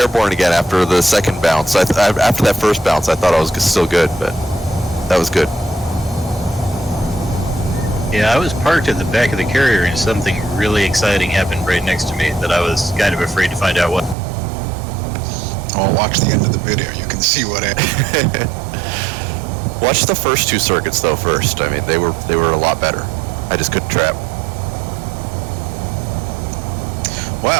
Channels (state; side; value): drops out; left; at 14.2 s